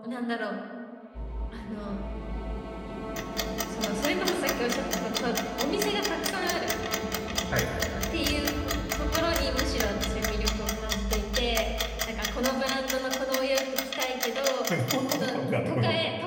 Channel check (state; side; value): identical; both; correlation 1.00